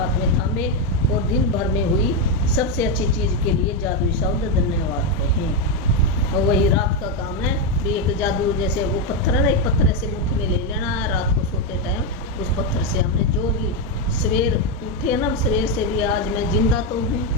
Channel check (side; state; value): both; normal; correlation 0.05